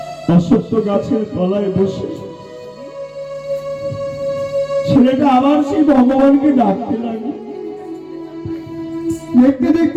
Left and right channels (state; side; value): identical; both; correlation 1.00